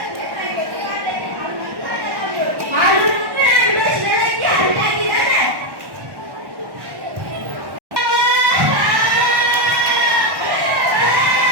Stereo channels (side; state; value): left; late; 1.1 ms